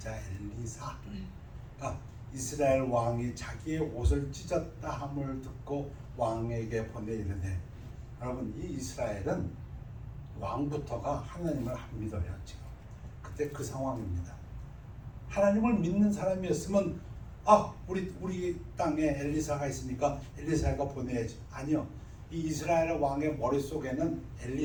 엘리사가 이스라엘 왕이 자기의 옷을 찢었다 함을 듣고 왕에게 보내 이르되, 여러분 이 이스라엘은 왕부터가 하나님을 안 믿어요. 지금 그때 그 상황입니다. 하나님을 믿는 사람이었으면 우리 땅에 엘리사가 있으니까 엘리사가 보내야지. 아니요, 이 이스라엘 왕의 머릿속에는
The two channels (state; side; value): identical; both; correlation 1.00